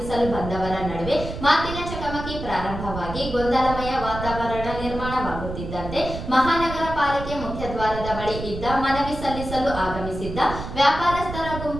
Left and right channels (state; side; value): noise; right; rumble, 8 dB below the sound